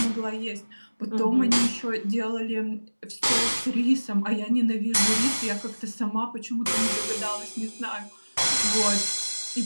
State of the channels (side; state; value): both; inverted; correlation -1.00